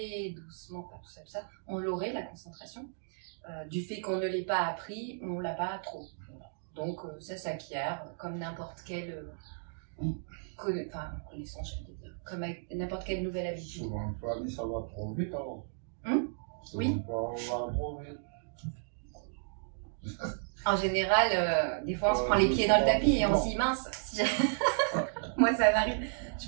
doucement, tout ça, tout ça. On l'aurait, la concentration. Du fait qu'on ne l'ait pas appris, on ne l'a pas trop. Voilà. Donc ça s'acquiert comme n'importe quelle connaissance, je veux dire, comme n'importe quelle nouvelle habitude. Souvent, en famille, ça va trop vite alors. Oui. Ça va trop vite. En général, des fois on se prend les pieds dans le tapis et on se dit mince, moi ça m'arrive,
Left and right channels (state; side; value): silent; left; digital silence